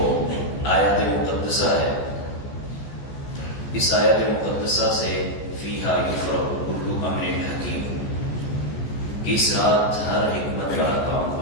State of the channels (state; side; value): late; right; 14 ms